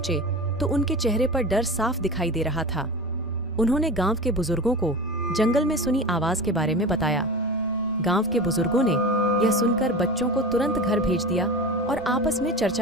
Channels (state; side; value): normal; both; correlation 0.30